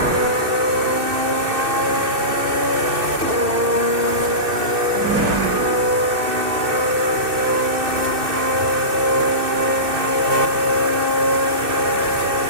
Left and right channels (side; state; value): left; late; 2.6 ms